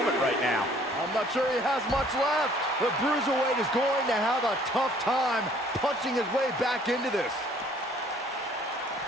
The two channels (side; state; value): both; normal; correlation 0.57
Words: right now. I'm not sure he has much left. The Bruiserweight is going to have a tough time punching his way back into this.